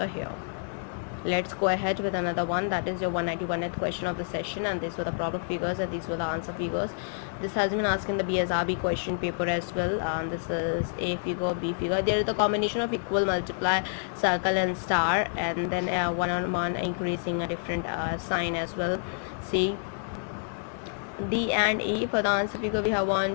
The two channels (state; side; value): silent; right; digital silence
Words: here. Let's go ahead with another one, that is your 191th question of the session, and these were the problem figures and these were the answer figures. This has been asked in the BSRB question paper as well, and this is A figure, B figure. There is the combination of equal, multiply, circle and star, and then one on one increasing a different sign as well. C, D and E. For the answer figure we have